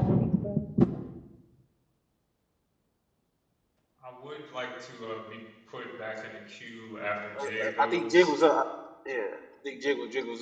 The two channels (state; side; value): identical; both; correlation 1.00